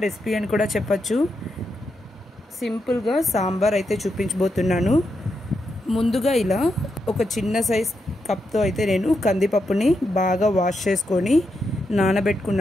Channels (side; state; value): both; normal; correlation 0.84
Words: రెసిపీ అని కూడా చెప్పచ్చు. సింపుల్గా సాంబార్ అయితే చూపించబోతున్నాను. ముందుగా ఇలా ఒక చిన్న సైజ్ కప్తో అయితే నేను కందిపప్పుని బాగా వాష్ చేసుకొని